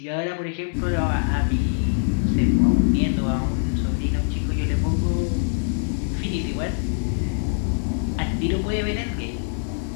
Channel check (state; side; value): silent; right; digital silence